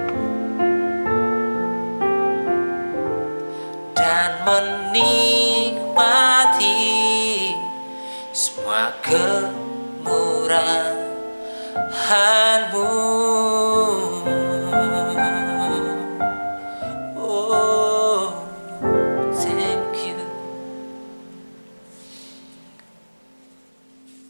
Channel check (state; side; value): inverted; both; correlation -1.00